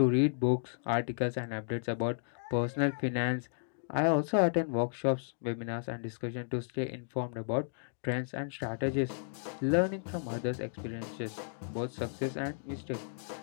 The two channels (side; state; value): right; silent; digital silence